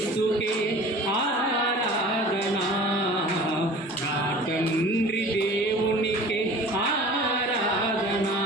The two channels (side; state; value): both; normal; correlation 0.42